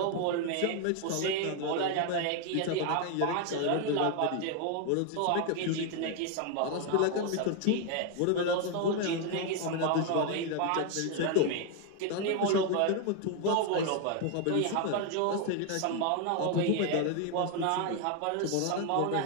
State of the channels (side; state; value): both; different; correlation 0.01